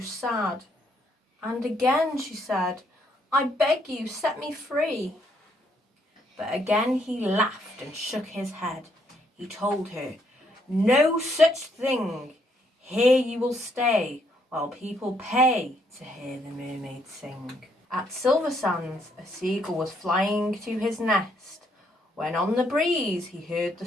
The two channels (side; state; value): both; normal; correlation 0.72